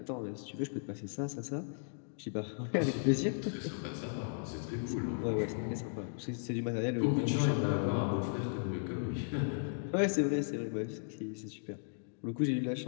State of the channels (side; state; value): right; silent; digital silence